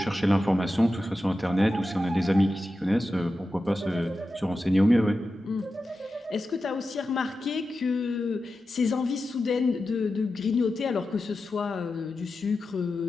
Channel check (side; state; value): both; normal; correlation 0.92